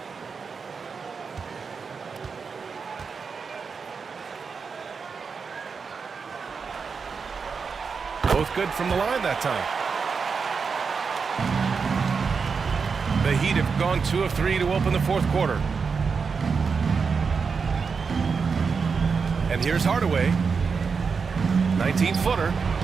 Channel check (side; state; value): left; quieter; 5.4 dB